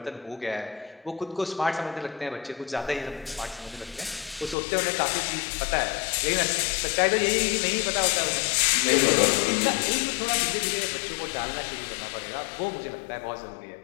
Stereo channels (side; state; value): right; drops out; at 4.5 s